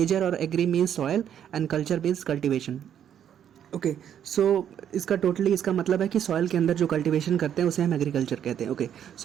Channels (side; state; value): left; quieter; 9.5 dB